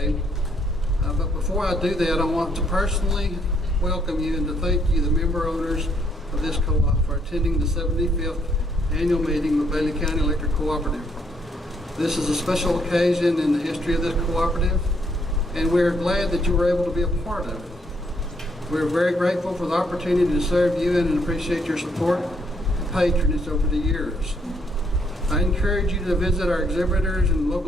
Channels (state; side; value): normal; both; correlation 0.71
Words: But before I do that, I want to personally welcome you and to thank you, the member owners of this co-op, for attending the 75th annual meeting of Bailey County Electric Cooperative. This is a special occasion in the history of this cooperative, and we're glad that you were able to be a part of it. We're very grateful for the opportunity to serve you and appreciate your support and patronage over the years. I encourage you to visit our exhibitors and